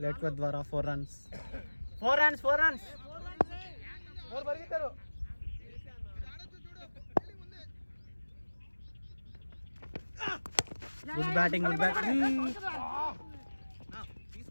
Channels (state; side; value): inverted; both; correlation -1.00